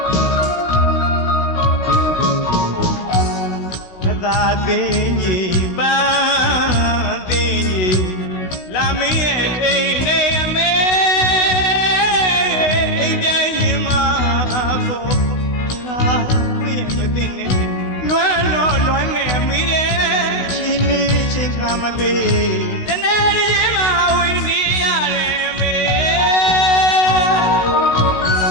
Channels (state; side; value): late; right; 16 ms